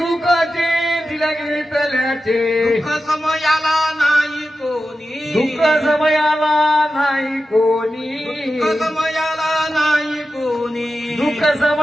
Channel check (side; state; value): both; normal; correlation 0.92